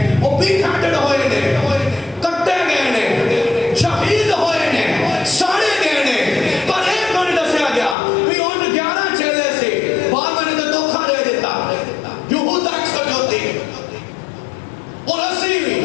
ਉਹ ਵੀ ਕੱਟੜ ਹੋਏ ਨੇ ਕੱਟੇ ਗਏ ਨੇ ਸ਼ਹੀਦ ਹੋਏ ਨੇ ਸਾੜੇ ਗਏ ਨੇ ਪਰ ਇਹ ਕਿਉਂ ਨਹੀਂ ਦੱਸਿਆ ਗਿਆ ਵੀ ਉਹ 11 ਚੇਲੇ ਸੀ ਬਾਅਦ ਨੇ ਤਾਂ ਧੋਖਾ ਦੇ ਦਿੱਤਾ ਯਹੂਦਾ ਇਸਕਰਿਓਤੀ ਔਰ ਅਸੀਂ ਵੀ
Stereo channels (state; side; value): drops out; right; at 8.0 s